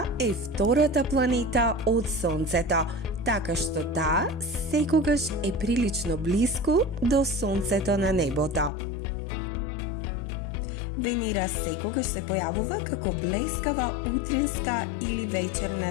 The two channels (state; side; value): drops out; right; at 8.7 s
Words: е втората планета од Сонцето, така што таа секогаш е прилично блиску до Сонцето на небото. Венера секогаш се појавува како блескава утринска или вечерна